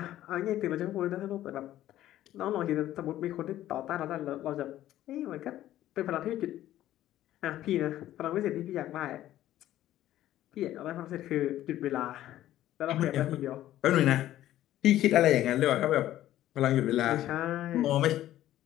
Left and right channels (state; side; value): quieter; right; 13.4 dB